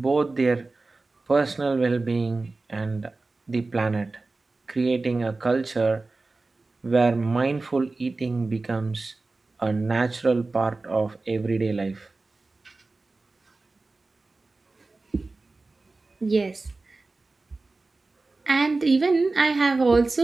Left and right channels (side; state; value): left; quieter; 3.5 dB